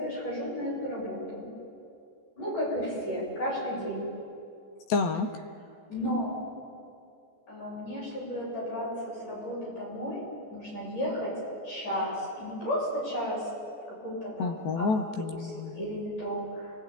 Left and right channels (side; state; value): right; late; 14 ms